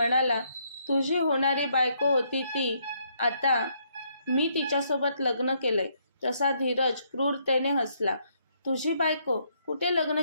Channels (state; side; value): inverted; both; correlation -0.72